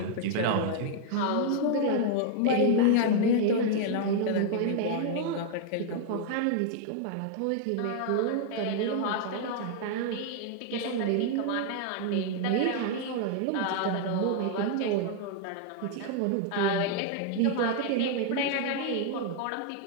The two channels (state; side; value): different; both; correlation 0.00